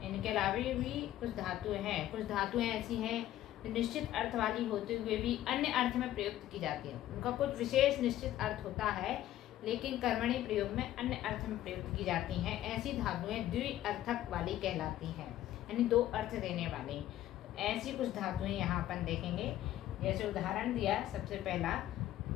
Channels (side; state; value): right; quieter; 13.4 dB